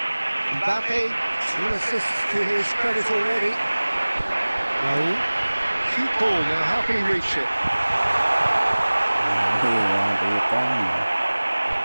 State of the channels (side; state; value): both; inverted; correlation -1.00